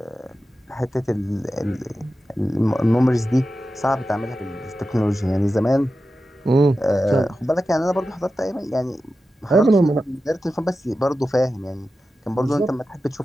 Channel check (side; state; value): both; normal; correlation 0.92